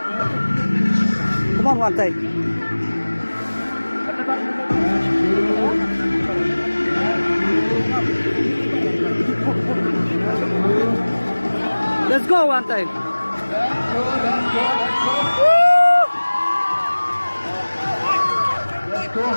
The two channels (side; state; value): both; inverted; correlation -1.00